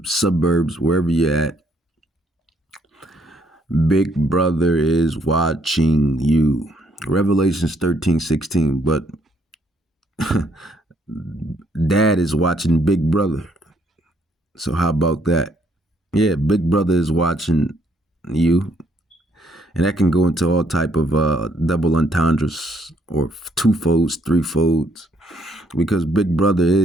suburbs, wherever you're at, Big Brother is watching you. Revelations 13, 16, but Dad is watching Big Brother. So how about that? Yeah, Big Brother is watching you. And that can go into all type of double entendres or two-folds, three-folds, because Big Brother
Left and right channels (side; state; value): both; normal; correlation 0.69